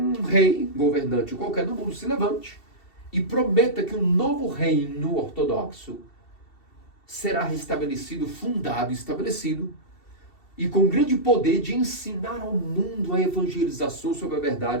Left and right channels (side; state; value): right; late; 2.7 ms